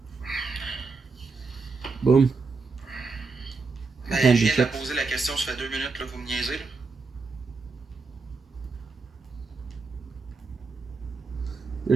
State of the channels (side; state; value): left; quieter; 4.2 dB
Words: Boom. Ben, Candy je viens de la chips. poser la question, ça fait 2 minutes, là, vous me niaisez. Là.